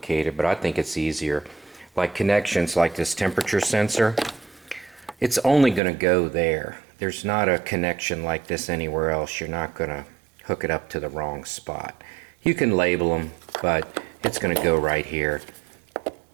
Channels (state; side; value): drops out; left; at 5.8 s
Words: but I think it's easier. Like connections like this temperature sensor, it's only going to go there. There's not a connection like this anywhere else. You're not going to hook it up to the wrong spot. You can label them, but it's going to go right here.